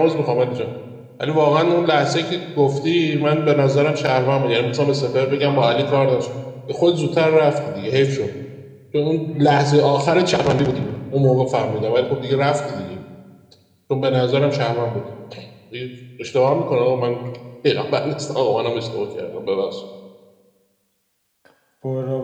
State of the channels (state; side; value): identical; both; correlation 1.00